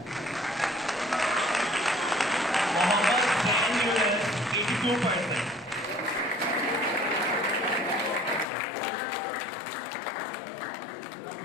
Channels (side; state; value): right; drops out; at 8.5 s